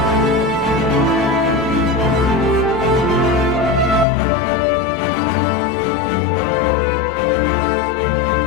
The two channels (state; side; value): drops out; right; at 4.0 s